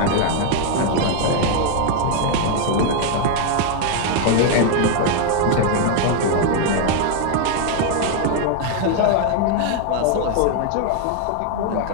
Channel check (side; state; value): both; different; correlation 0.01